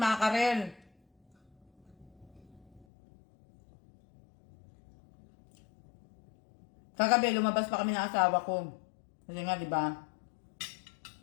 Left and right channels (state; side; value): drops out; right; at 2.9 s